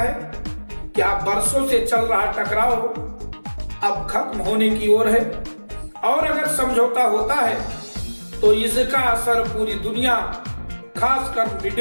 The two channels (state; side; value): inverted; both; correlation -1.00